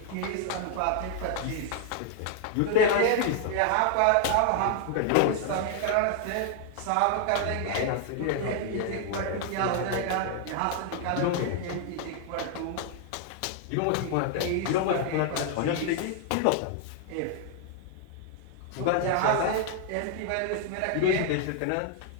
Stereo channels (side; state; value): both; different; correlation 0.00